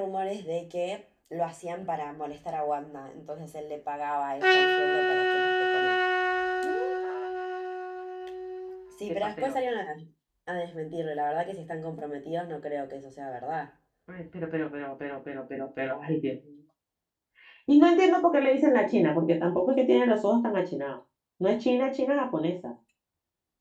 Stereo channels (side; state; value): both; identical; correlation 1.00